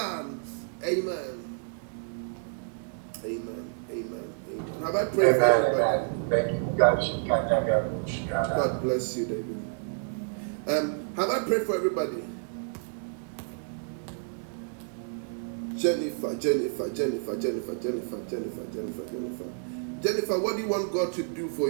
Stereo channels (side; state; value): left; silent; 58 dB below the other